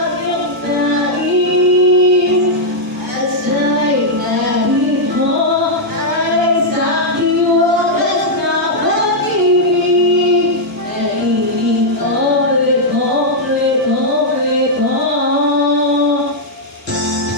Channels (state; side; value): normal; both; correlation -0.05